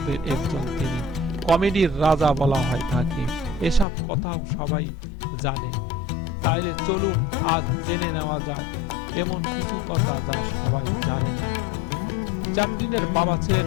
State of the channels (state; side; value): drops out; right; at 3.9 s